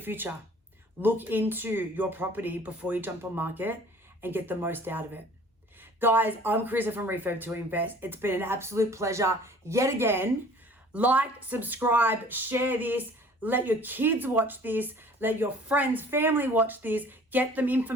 Look into your property before you jump on market and get the most out of it. Guys, I'm Corissa from Refurb to Invest. It's been an absolute pleasure yet again. Like, subscribe, share this. Let your kids watch this. Let your friends, family watch this. Get them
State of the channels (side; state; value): both; normal; correlation 0.50